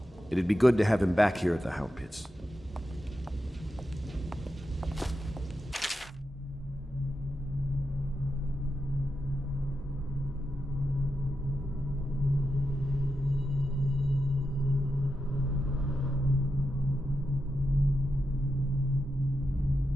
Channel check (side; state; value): both; normal; correlation 0.88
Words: It'd be good to have him back here at the Hound Pits.